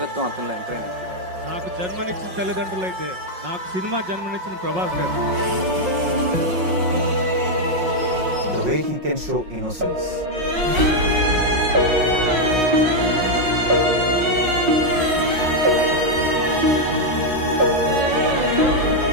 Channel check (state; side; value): late; left; 5.5 ms